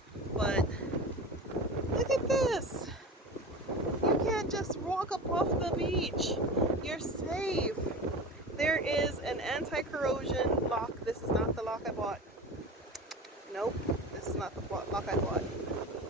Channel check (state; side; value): normal; both; correlation 0.31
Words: But look at this. You can't just walk up off the beach. You're safe. There is an anti-corrosion lock. This is not the lock I bought. Nope, this is not the lock I bought.